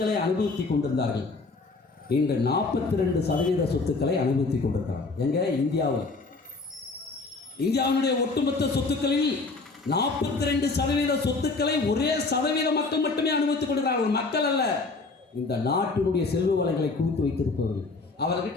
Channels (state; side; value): quieter; right; 3.7 dB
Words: அனுபவித்துக் கொண்டிருந்தார்கள். இன்று 42% சொத்துக்களை அனுபவித்துக் கொண்டிருக்கிறார்கள். எங்க? இந்தியாவில். இந்தியாவுடைய ஒட்டுமொத்த சொத்துக்களில் 42% சொத்துக்களை ஒரே சதவீத மக்கள் மட்டுமே அனுபவித்துக் கொண்டிருக்கிறார்கள். மக்கள் அல்ல, இந்த நாட்டினுடைய செல்வ வளங்களை குவித்து வைத்திருப்பவர்கள்.